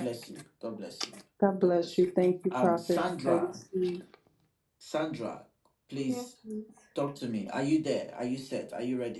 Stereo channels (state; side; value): identical; both; correlation 1.00